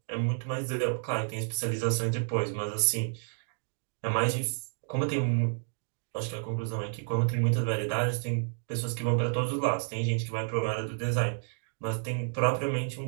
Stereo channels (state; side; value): silent; left; digital silence